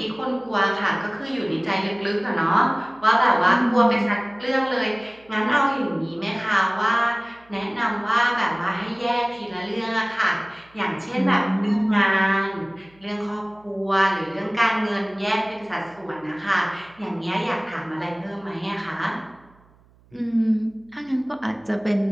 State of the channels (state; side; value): noise; right; hum, 30 dB below the sound